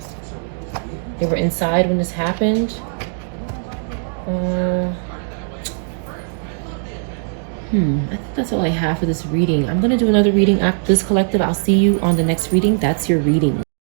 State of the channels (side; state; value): left; silent; 66 dB below the other